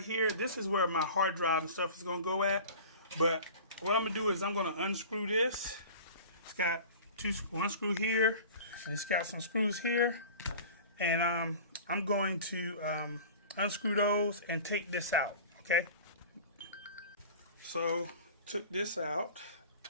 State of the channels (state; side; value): inverted; both; correlation -0.39